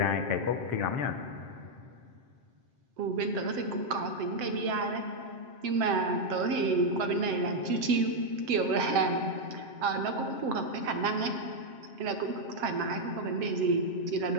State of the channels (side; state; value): left; late; 7.7 ms